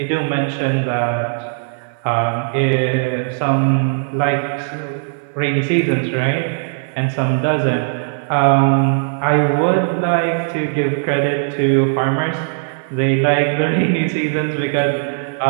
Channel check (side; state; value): left; silent; 58 dB below the other